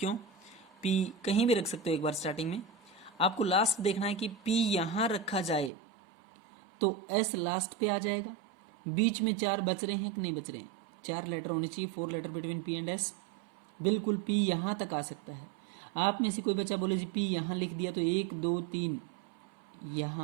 P कहीं भी रख सकते हो। एक बार स्टार्टिंग में आपको लास्ट देखना है कि P यहां रखा जाए तो S लास्ट पे आ जाएगा। बीच में 4 बच रहे हैं कि नहीं बच रहे हैं? 4 लेटर होने चाहिए, 4 letter between P and S। बिल्कुल P यहां तक आ सकता है। आप में से कोई बच्चा बोले जी P यहां लिख दिया तो 1 2 3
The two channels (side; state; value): left; drops out; at 5.7 s